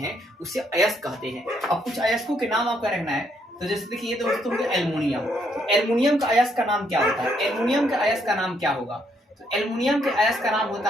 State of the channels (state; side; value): normal; both; correlation 0.73